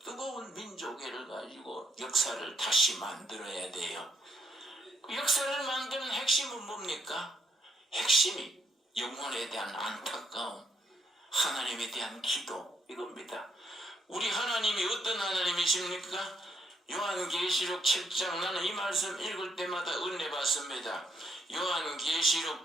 뜨거운 민족애를 가지고 역사를 다시 만들어야 돼요. 그 역사를 만드는 핵심은 뭡니까? 핵심이 영혼에 대한 안타까움, 하나님에 대한 기도, 이겁니다. 우리 하나님이 어떤 하나님이십니까? 요한계시록 7장, 나는 이 말씀 읽을 때마다 은혜 받습니다. 요한계시록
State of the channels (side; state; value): both; normal; correlation 0.74